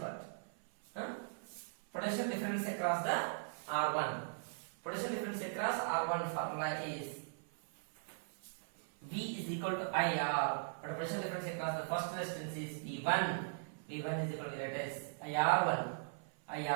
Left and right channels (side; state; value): left; silent; 52 dB below the other